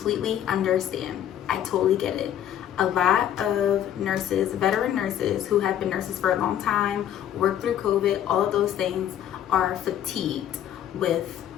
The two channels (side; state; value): right; quieter; 10.7 dB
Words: understand. I totally get it. A lot of nurses, veteran nurses who have been nurses for a long time, worked through COVID, all of those things, are fatigued with